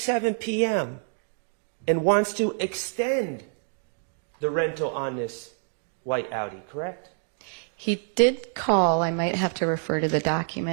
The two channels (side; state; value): left; silent; digital silence